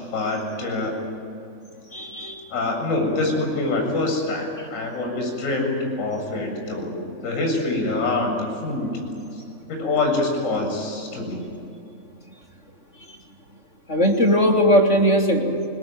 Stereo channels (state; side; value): late; right; 3.5 ms